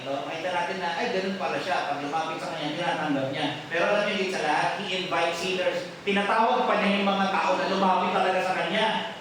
ito, makita natin na, ganun pala siya. Pag lumapit sa Kanya, tinatanggap niya. Pero alam niyo, higit sa lahat, He invites sinners. Tinatawag pa niya yung mga tao na lumapit talaga sa Kanya.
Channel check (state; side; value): identical; both; correlation 1.00